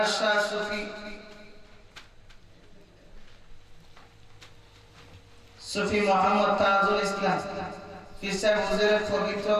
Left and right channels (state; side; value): identical; both; correlation 1.00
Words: শাহ সুফি মোহাম্মদ তাজুল ইসলাম পীর সাহেব হুজুরের পবিত্র